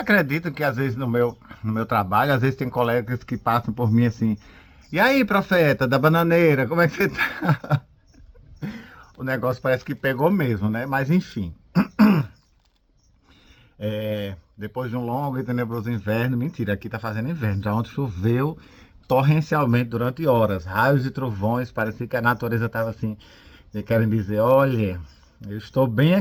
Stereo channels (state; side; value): identical; both; correlation 1.00